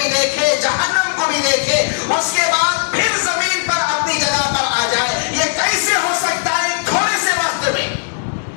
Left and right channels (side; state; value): right; silent; 66 dB below the other